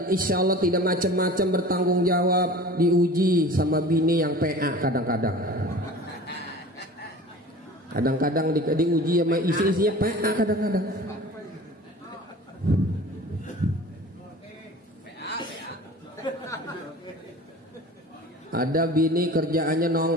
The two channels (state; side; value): normal; both; correlation 0.40